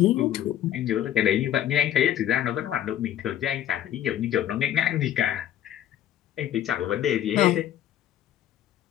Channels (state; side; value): quieter; right; 11.3 dB